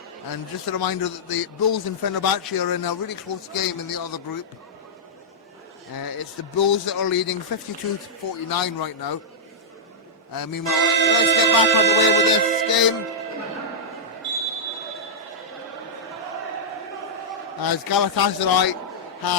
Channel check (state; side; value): normal; both; correlation -0.10